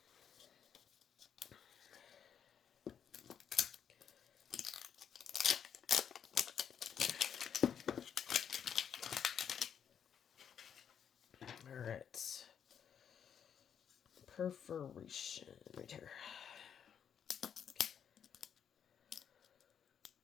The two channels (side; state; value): right; quieter; 8.2 dB